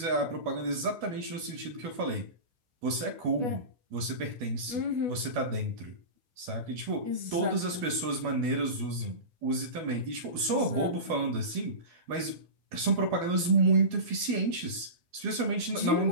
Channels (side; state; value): left; late; 12 ms